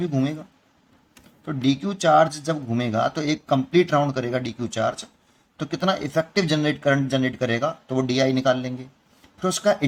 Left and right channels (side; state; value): both; identical; correlation 1.00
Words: घूमेगा। तो dq चार्ज जब घूमेगा तो एक कंप्लीट राउंड करेगा dq चार्ज, तो कितना इफेक्टिव करंट जनरेट करेगा, तो वो di निकाल लेंगे। फिर उसका